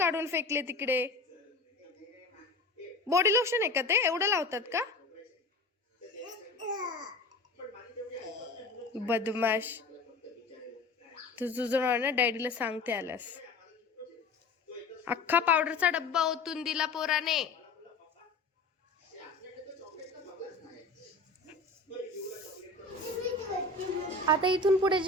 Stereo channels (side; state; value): right; quieter; 3.4 dB